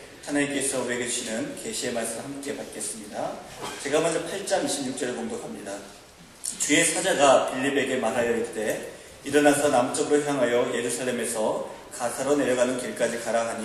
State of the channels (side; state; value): both; identical; correlation 1.00